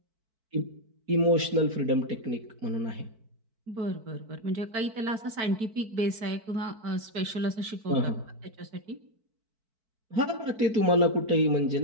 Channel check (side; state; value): left; late; 4.5 ms